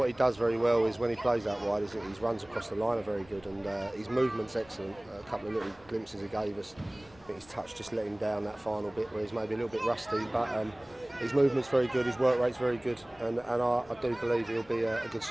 he does very well is when he plays out wide, is his runs across the line are very good, and his movement's excellent. A couple of little glimpses he gave us. I think his touch just let him down that final bit where he's maybe a little bit rusty, but his movement's very good, his work rate's very good, and I do believe he'll be a good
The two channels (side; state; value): left; noise; rumble, 26 dB below the sound